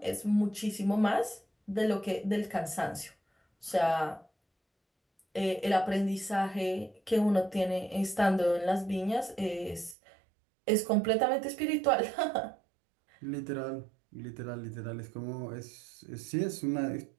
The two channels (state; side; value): drops out; left; at 10.0 s